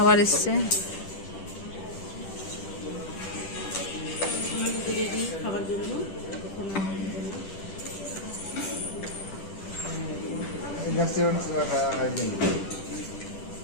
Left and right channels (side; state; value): right; late; 10 ms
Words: এসছে। খাবার জন্য